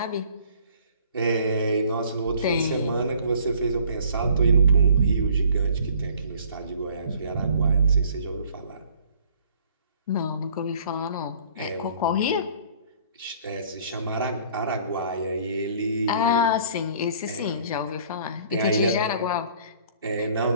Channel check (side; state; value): both; inverted; correlation -0.55